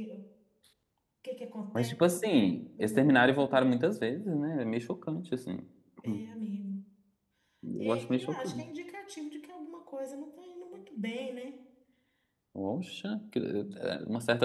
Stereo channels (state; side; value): identical; both; correlation 1.00